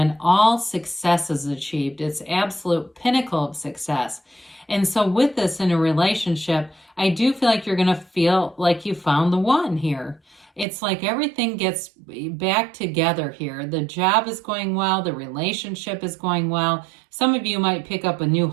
all success is achieved. It's absolute pinnacle of success. And so with this in a relationship, I do feel like you're going to feel like you found the one here. It's like everything gets back together here. The job is going well. The relationship is going well. Some of you might pick up a new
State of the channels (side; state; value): left; drops out; at 10.7 s